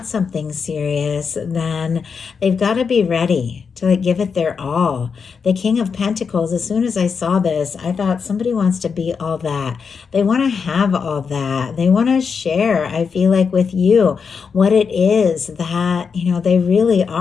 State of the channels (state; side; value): quieter; right; 5.8 dB